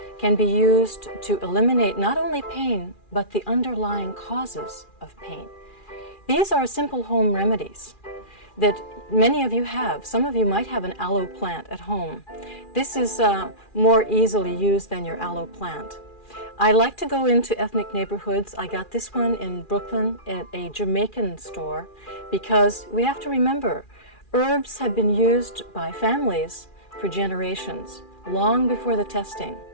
can be used to eliminate not only pain, but the underlying causes of pain. These are simple home remedies that many of you have. Some of you might have an aloe plant at home. This is more easily used than your aloe plant. I like to go into ethnic neighborhoods. I got this one in Brooklyn at a Jamaican store because we have to remember herbs have been used by families for generations, long before the testing.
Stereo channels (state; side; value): late; right; 2.4 ms